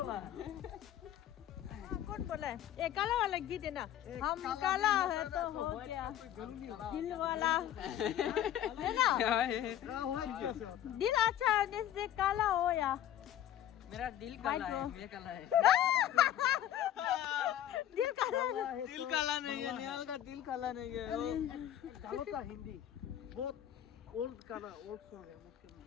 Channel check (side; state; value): right; quieter; 11.6 dB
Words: कौन बोला है ये काला वाला गीत है ना हम काला है तो हो क्या दिल वाला है ना दिल अच्छा है जैसे काला हो या मेरा दिल काला है ये काला है दिल काला दिल काला नहीं है निहाल का दिल काला नहीं है वो कालो का हिंदी बहुत ओल्ड काला ओल्ड सॉन्ग है मुश्किल